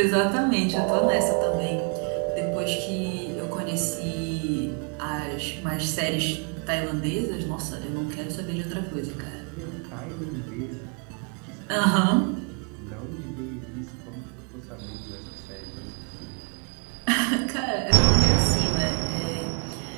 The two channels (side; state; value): left; quieter; 38.5 dB